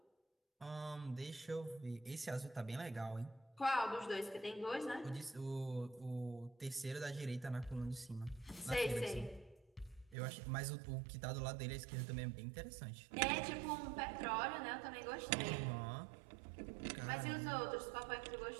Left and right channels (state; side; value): drops out; left; at 10.2 s